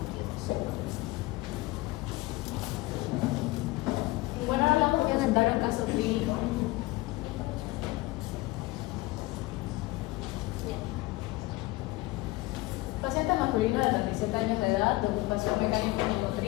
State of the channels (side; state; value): right; quieter; 20.4 dB